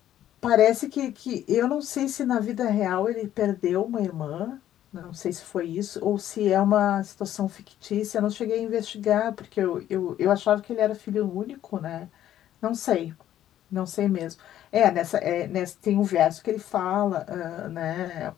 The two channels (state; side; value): quieter; right; 11.9 dB